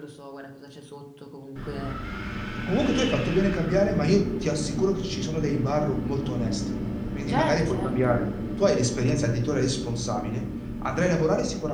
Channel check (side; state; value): both; identical; correlation 1.00